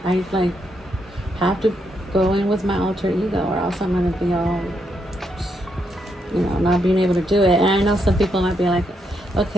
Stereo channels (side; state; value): both; normal; correlation 0.78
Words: I like have to go in with my alter ego, or else I'm gonna be all, you know, not being able to do it. And I know some people might be like,